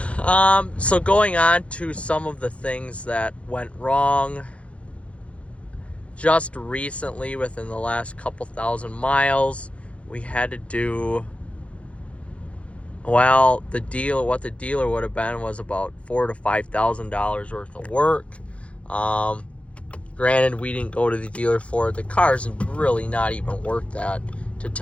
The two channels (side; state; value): right; late; 0.062 ms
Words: So going on to some of the things that went wrong just recently within the last couple thousand miles, we had to do, well, what the dealer would have been was about $4,000 to $5,000 worth of work. Granted, we didn't go to the dealer for it. The car's really not even worth that, to